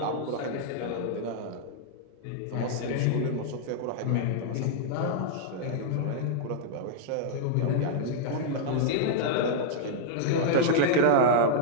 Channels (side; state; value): both; different; correlation -0.01